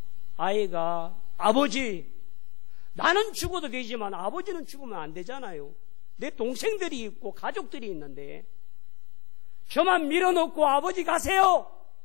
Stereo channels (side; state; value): right; quieter; 28.0 dB